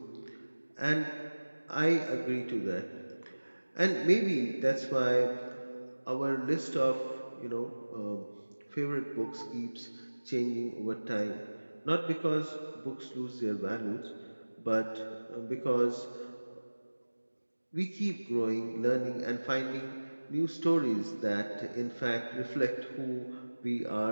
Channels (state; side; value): inverted; both; correlation -1.00